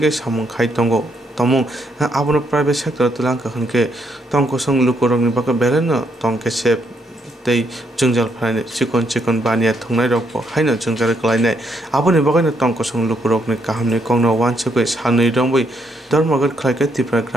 samung khlaitongo tomung abono private sector tulangka hunke tongkosung lukorongni bagwi beleno tongkese tei jungjal phaine chikon bania thungnai rokbo haino jungjal klainai aboni bagaino tongkosung lukurokni kahamni kongno wansukoi sanui rongbai dharmagot khlaike tripura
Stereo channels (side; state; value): both; normal; correlation 0.75